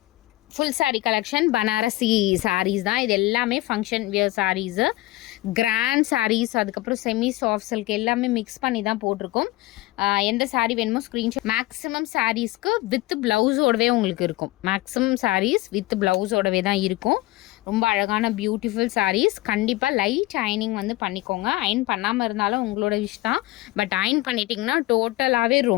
ஃபுல் சாரீ கலெக்ஷன் பனாரசி சாரீஸ் தான். இது எல்லாமே function wear saris, grand saris, அதுக்கப்புறம் செமி சாஃப்ட் சில்க் எல்லாமே மிக்ஸ் பண்ணி தான் போட்டிருக்கோம். எந்த சாரீ வேணுமோ ஸ்க்ரீன்ஷாட். மேக்ஸிமம் சாரீஸ்க்கு வித் ப்ளவுஸோடவே உங்களுக்கு இருக்கும். மேக்ஸிமம் சாரீஸ் வித் ப்ளவுஸோடவே தான் இருக்கும். ரொம்ப அழகான பியூட்டிஃபுல் சாரீஸ். கண்டிப்பாக லைட் அயனிங் வந்து பண்ணிக்கோங்க. அயன் பண்ணாமல் இருந்தாலும் உங்களோட விஷ் தான். பட் அயன் பண்ணிட்டிங்கன்னா டோட்டலாகவே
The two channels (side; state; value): right; quieter; 19.0 dB